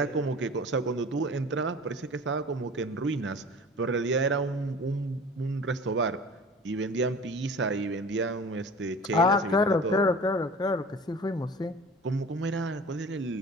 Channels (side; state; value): both; normal; correlation 0.41